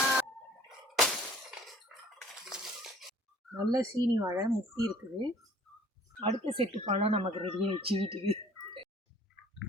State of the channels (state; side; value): normal; both; correlation 0.53